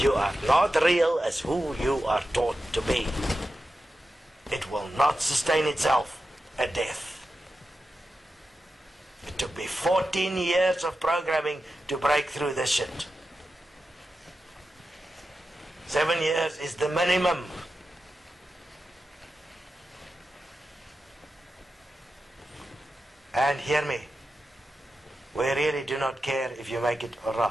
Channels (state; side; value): normal; both; correlation 0.91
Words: You are not real as who you are taught to be. It will not sustain itself at death. It took me 14 years of programming to break through this shit. 7 years is the minimum. And hear me, we really do not care if you make it or